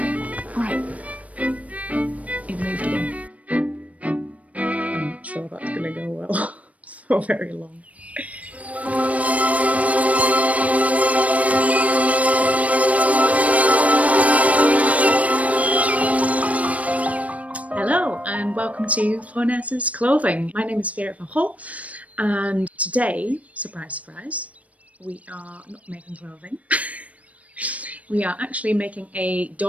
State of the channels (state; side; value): late; left; 0.067 ms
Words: Right. It moved again. I'm not sure that's going to go well for very long. Hello and welcome to Phronesis Clothing. My name is Vera van Hol, and today, surprise, surprise, we are not making clothing. We are actually making a